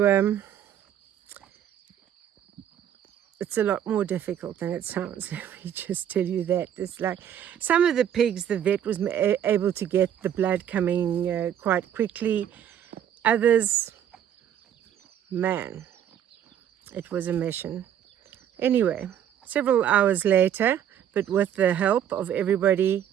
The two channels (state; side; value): quieter; left; 9.9 dB